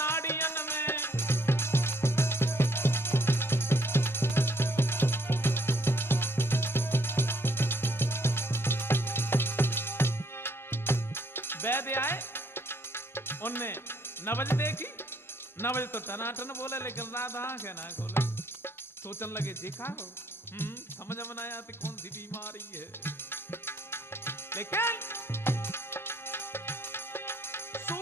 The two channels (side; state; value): both; normal; correlation 0.68